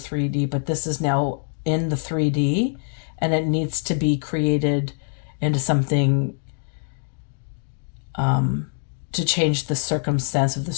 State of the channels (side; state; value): right; silent; digital silence